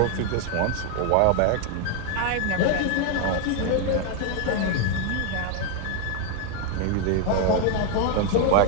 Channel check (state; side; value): different; both; correlation 0.01